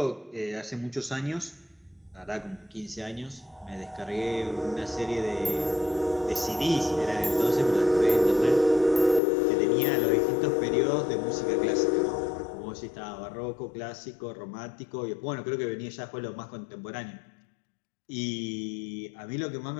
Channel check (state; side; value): drops out; right; at 9.2 s